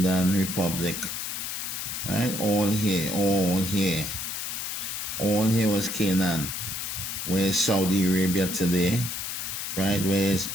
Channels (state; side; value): noise; left; hiss, 4 dB below the sound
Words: Republic, right? All here, all here. All here was Canaan. Where's Saudi Arabia today, right? Where's